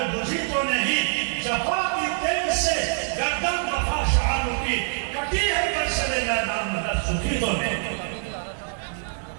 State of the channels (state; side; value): silent; left; digital silence